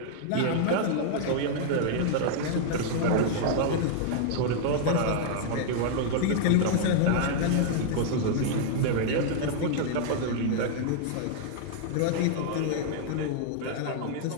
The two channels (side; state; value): both; different; correlation -0.01